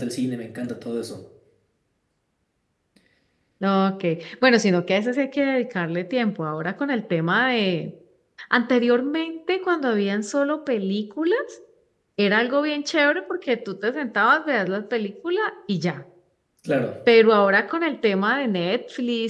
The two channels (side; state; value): both; identical; correlation 1.00